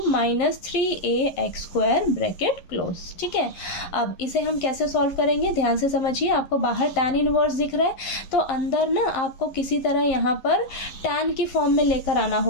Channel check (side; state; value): right; late; 11 ms